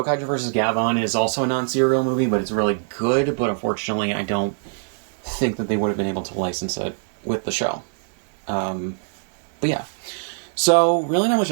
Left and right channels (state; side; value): silent; left; digital silence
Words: vs. Gabon is also a non-serial movie, but it's really good. But unfortunately, I don't think that they would have been able to license it with the show. But yeah. So, really not much